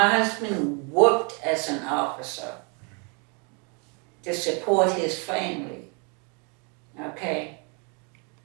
husband worked as an officer to support his family, okay?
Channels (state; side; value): quieter; left; 35.1 dB